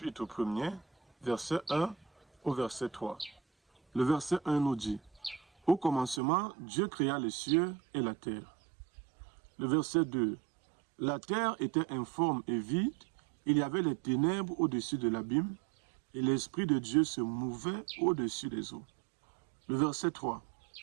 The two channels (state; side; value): drops out; left; at 6.2 s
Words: 1er, verset 1 au verset 3. Le verset 1 nous dit: au commencement, Dieu créa les cieux et la terre. Le verset 2. La terre était informe et vide, il y avait les ténèbres au-dessus de l'abîme, et l'Esprit de Dieu se mouvait au-dessus des eaux. Le verset 3.